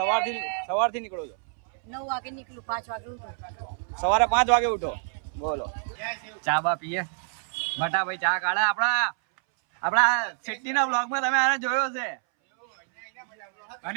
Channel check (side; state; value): left; silent; 59 dB below the other